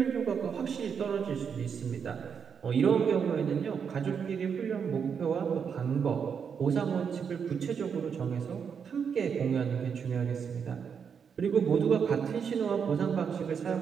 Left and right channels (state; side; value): quieter; left; 6.8 dB